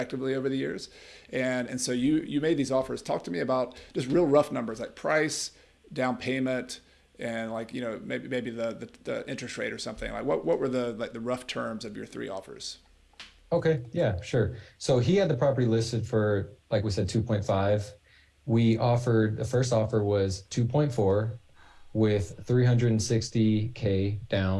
over the years. And so you made these offers. Talk to me about just real rough numbers like price, down payment, and maybe the interest rate or something. Like what were the rough terms of your three offers? Okay, yeah, sure. So he had the property listed for, like we said, 2.5. The first offer was 2.4 with 360K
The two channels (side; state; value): both; identical; correlation 1.00